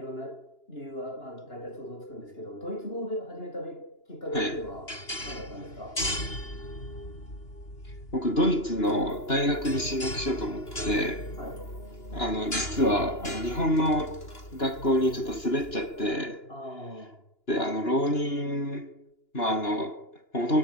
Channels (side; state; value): right; late; 2.9 ms